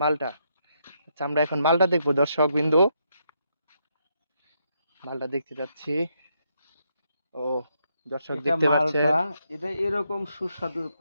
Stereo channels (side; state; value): both; inverted; correlation -0.77